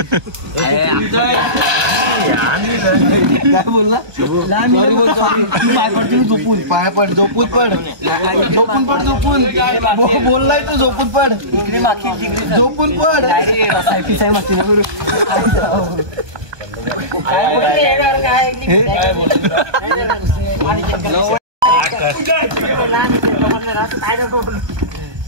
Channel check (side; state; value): left; late; 1.2 ms